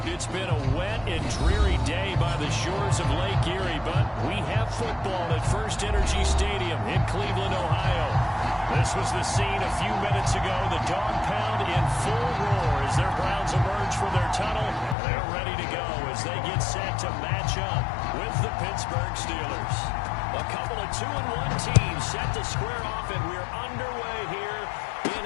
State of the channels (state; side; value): drops out; right; at 15.0 s